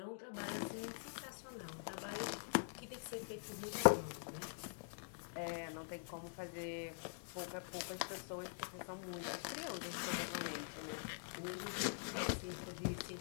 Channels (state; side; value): silent; right; digital silence